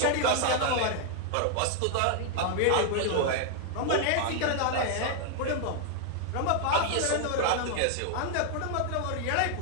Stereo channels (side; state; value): both; different; correlation 0.00